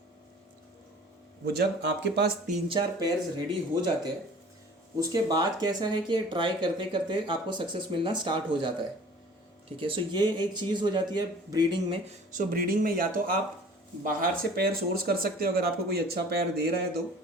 वो जब आपके पास 3-4 पेयर्स रेडी हो जाते हैं, उसके बाद कैसा है कि ट्राई करते करते आपको सक्सेस मिलना स्टार्ट हो जाता है, ठीक है। सो ये एक चीज़ हो जाती है ब्रीडिंग में। सो ब्रीडिंग में या तो आप बाहर से पेयर सोर्स कर सकते हो अगर आपको कोई अच्छा पेयर दे रहा है तो।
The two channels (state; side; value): normal; both; correlation 0.47